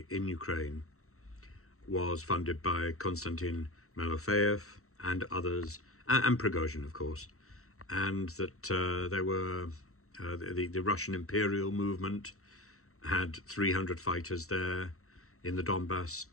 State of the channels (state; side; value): late; right; 0.64 ms